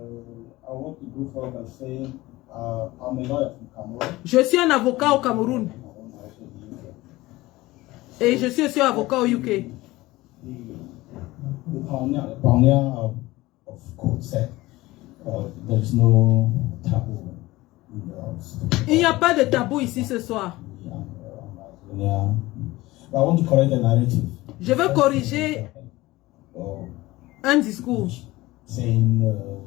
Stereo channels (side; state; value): right; quieter; 19.1 dB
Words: I want to go forward and say I'm a lawyer from Cameroon. Je suis un avocat au Cameroun. Et je suis aussi avocat au UK. The pioneer of code said there is no taboo. Il n'y a pas de tabou ici ce soir. But I want to correct the narrative. Je veux corriger un discours. Saying